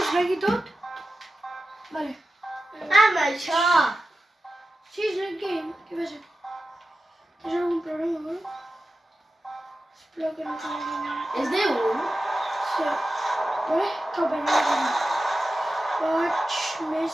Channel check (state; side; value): normal; both; correlation 0.93